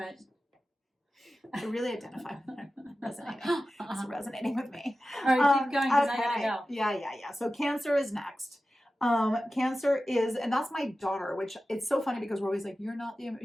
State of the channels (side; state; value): both; normal; correlation 0.94